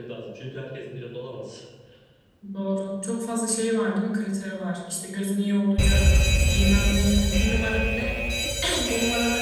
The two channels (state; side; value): identical; both; correlation 1.00